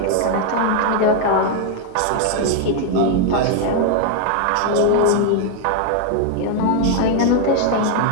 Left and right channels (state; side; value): different; both; correlation 0.00